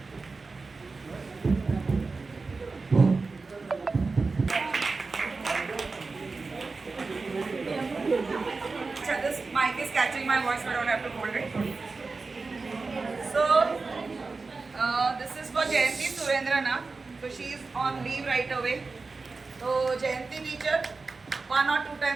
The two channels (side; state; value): left; quieter; 4.0 dB